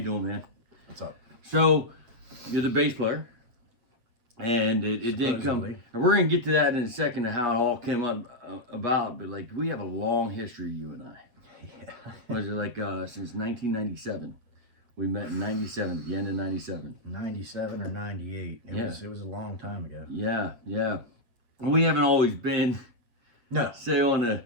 doing, man? What's up? So, you're the bass player, and it didn't come. And we're gonna get to that in a second, of how it all came up about. But like, we have a long history, you and I. Yeah. Was it like since 1997? We met in 97, the end of 97. 97 or 98. It was a long time ago. Yeah, yeah. We haven't always been, say on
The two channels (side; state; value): left; late; 8.2 ms